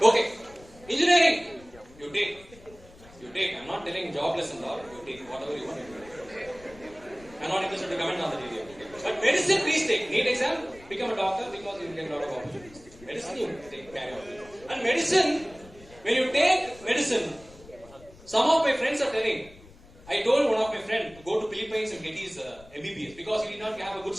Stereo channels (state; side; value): noise; left; rumble, 22 dB below the sound